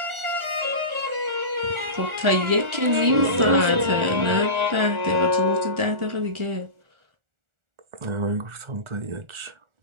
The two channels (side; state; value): left; late; 1.4 ms